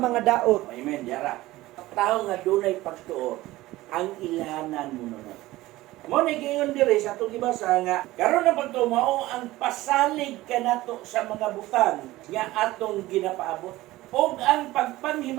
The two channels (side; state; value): left; quieter; 17.6 dB